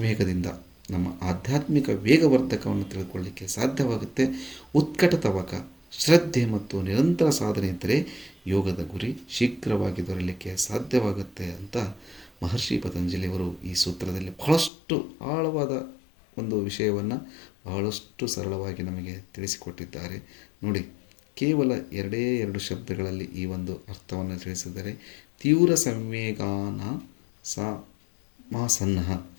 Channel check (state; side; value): drops out; right; at 14.7 s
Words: ನಮ್ಮ ಆಧ್ಯಾತ್ಮಿಕ ವೇಗವರ್ಧಕವನ್ನು ತಿಳ್ಕೊಳ್ಳಿಕ್ಕೆ ಸಾಧ್ಯವಾಗುತ್ತೆ. ಉತ್ಕಟ ತವಕ, ಶ್ರದ್ಧೆ ಮತ್ತು ನಿರಂತರ ಸಾಧನೆ ಇದ್ದರೆ ಯೋಗದ ಗುರಿ ಶೀಘ್ರವಾಗಿ ದೊರೆಯಲಿಕ್ಕೆ ಸಾಧ್ಯವಾಗುತ್ತೆ ಅಂತ ಮಹರ್ಷಿ ಪತಂಜಲಿಯವರು ಈ ಸೂತ್ರದಲ್ಲಿ ಬಹಳಷ್ಟು ಆಳವಾದ ಒಂದು ವಿಷಯವನ್ನು ಬಹಳಷ್ಟು ಸರಳವಾಗಿ ನಮಗೆ ತಿಳಿಸಿಕೊಟ್ಟಿದ್ದಾರೆ. ನೋಡಿ, ಕೇವಲ 2 ಶಬ್ದಗಳಲ್ಲಿ ಈ ಒಂದು ಅರ್ಥವನ್ನು ತಿಳಿಸಿದರೆ, ತೀವ್ರ ಸಂವೇಗಾನ ಮಾಸನ್ನಃ.